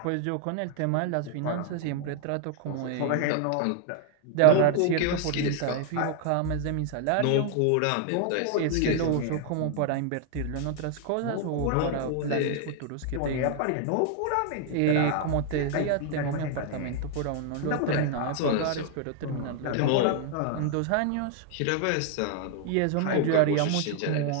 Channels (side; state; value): both; different; correlation 0.00